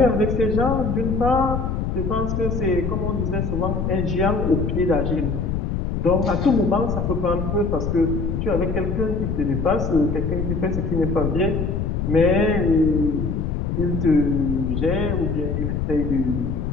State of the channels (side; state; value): left; noise; rumble, 1 dB below the sound